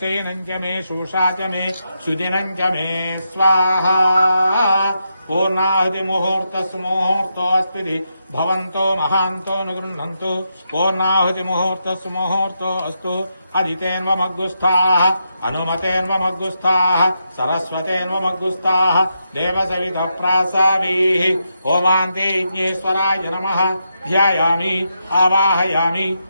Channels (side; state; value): both; inverted; correlation -0.83